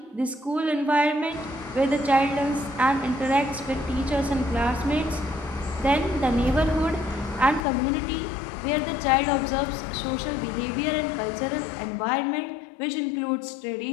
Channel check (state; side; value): drops out; right; at 7.7 s